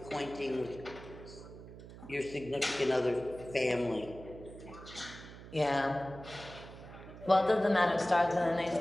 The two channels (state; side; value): noise; right; hum, 15 dB below the sound